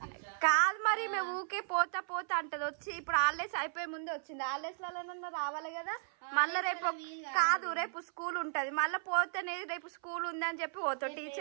కాదు మరి, మేము ఊకే పోతా అంటది. వచ్చి ఇప్పుడు హాలిడేస్ అయిపోయే ముందే వచ్చింది. హాలిడేస్ లలో రావాలి కదా, మళ్ళీ రేపు కాదు, రేపు స్కూల్ ఉంటది. మళ్ళీ పోతేనే రేపు స్కూల్ ఉంది అని చెప్పి పోతావు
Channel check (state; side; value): silent; left; 54 dB below the other